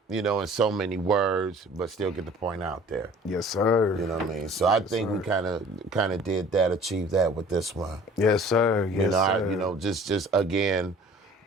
you know, in so many words, but still get the point out there. Yes, sir. You know what I mean? So I think we kind of did that, achieved that with this one. Yes, sir. Yes, you know, sir. you know, just again,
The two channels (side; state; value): both; normal; correlation 0.49